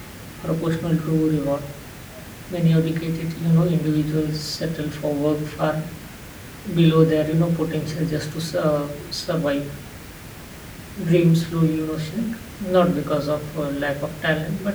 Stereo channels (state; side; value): identical; both; correlation 1.00